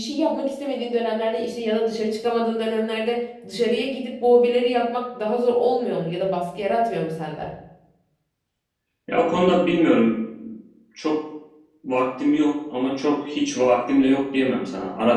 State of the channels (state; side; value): identical; both; correlation 1.00